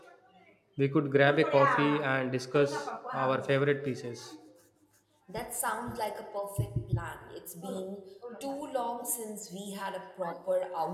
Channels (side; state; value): both; identical; correlation 1.00